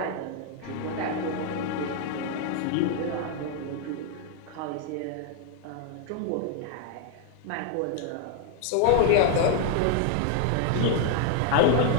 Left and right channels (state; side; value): different; both; correlation 0.00